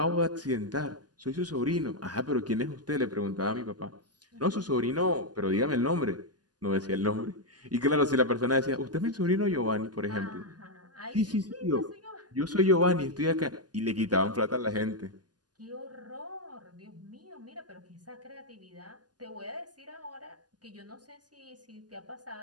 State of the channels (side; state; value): left; late; 0.69 ms